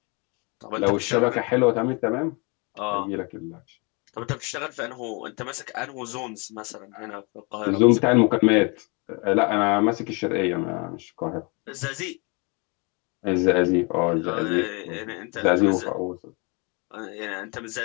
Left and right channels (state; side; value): quieter; right; 30.9 dB